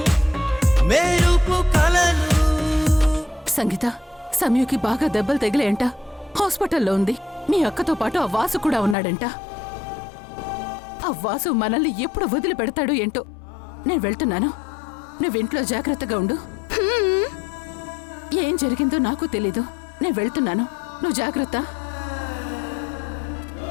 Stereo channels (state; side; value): drops out; right; at 9.0 s